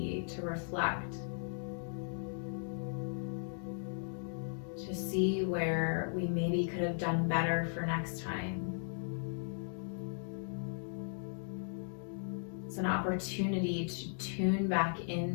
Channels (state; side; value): silent; right; digital silence